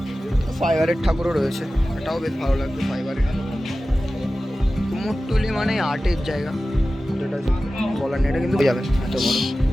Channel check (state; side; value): normal; both; correlation 0.95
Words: ফাইবারের ঠাকুরও রয়েছে, এটাও বেশ ভালো লাগবে। ফাইবারের কুমোরটুলি মানে আর্টের জায়গা, যেটা বলার নেই, এটা কিন্তু যাবেন এত বড়।